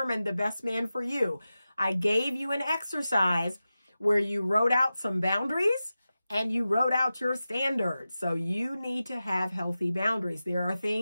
the best man for you, I gave you an exercise where you wrote out some boundaries and you wrote out your standards. So you need to have healthy boundaries. There are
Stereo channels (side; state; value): both; inverted; correlation -0.94